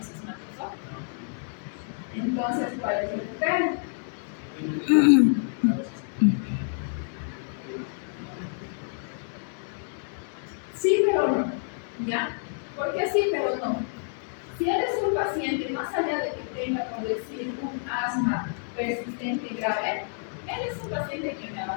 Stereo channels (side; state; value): right; silent; digital silence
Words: asmático? Entonces, ¿cuál es el criterio? Sí, pero no, ¿ya? ¿Por qué sí, pero no? Si eres un paciente, más allá de que tenga, por decir, un asma persistente y grave, él es un paciente que me